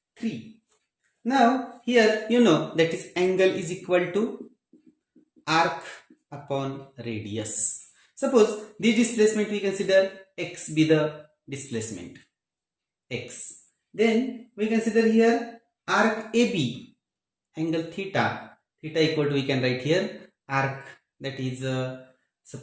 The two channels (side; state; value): both; identical; correlation 1.00